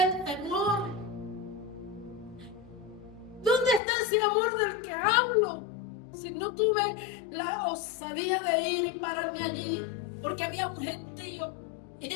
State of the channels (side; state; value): right; drops out; at 3.8 s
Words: el temor. ¿Dónde está ese amor del que hablo? Si no tuve la osadía de ir y pararme allí, porque había un gentío y